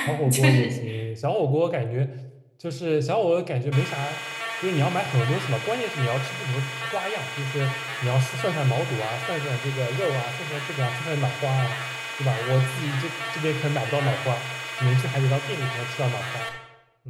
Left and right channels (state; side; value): identical; both; correlation 1.00